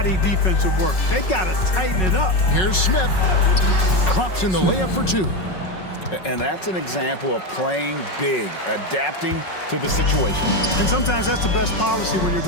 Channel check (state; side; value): late; right; 5.4 ms